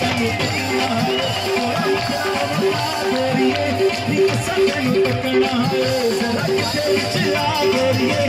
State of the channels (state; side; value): identical; both; correlation 1.00